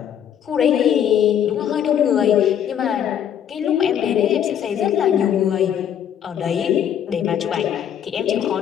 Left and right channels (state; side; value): quieter; right; 9.4 dB